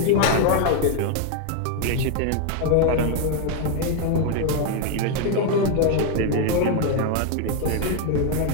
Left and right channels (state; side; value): different; both; correlation 0.01